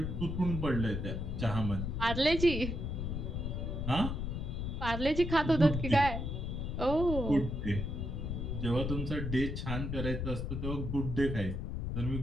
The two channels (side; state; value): left; noise; rumble, 3 dB below the sound